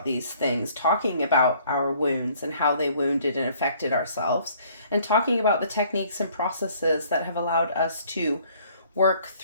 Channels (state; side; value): inverted; both; correlation -0.59